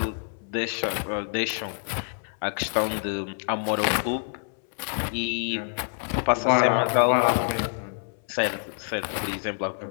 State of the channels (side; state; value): right; silent; 60 dB below the other